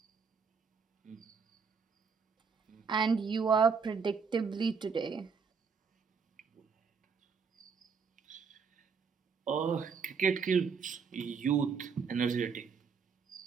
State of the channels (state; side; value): quieter; left; 5.7 dB